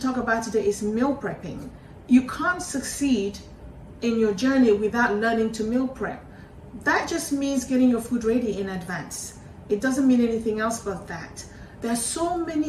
about today is meal prepping. You can't succeed in your journey without learning to meal prep. That just means getting your food ready in advance. It doesn't mean anything else but that. There are so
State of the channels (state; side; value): identical; both; correlation 1.00